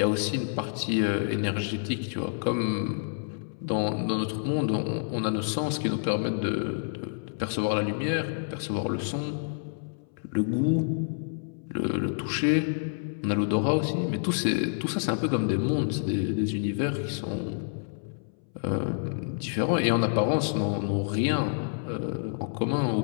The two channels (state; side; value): silent; right; 59 dB below the other